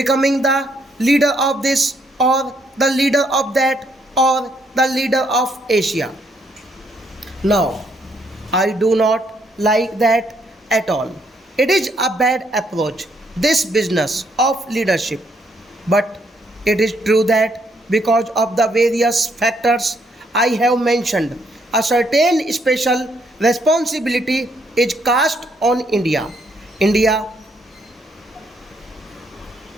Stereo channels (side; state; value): both; normal; correlation 0.72